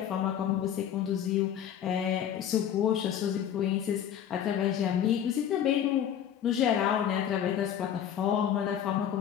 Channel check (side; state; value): right; quieter; 9.6 dB